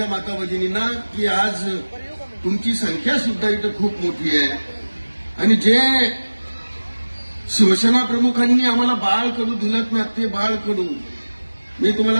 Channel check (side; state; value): both; inverted; correlation -1.00